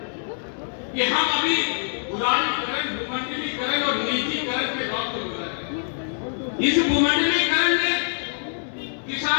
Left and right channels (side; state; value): right; silent; digital silence